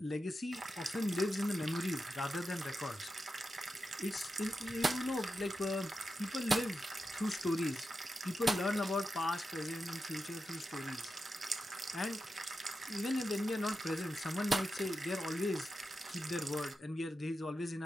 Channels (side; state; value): both; normal; correlation 0.89